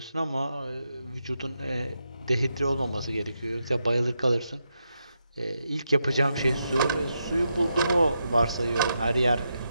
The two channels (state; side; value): inverted; both; correlation -0.84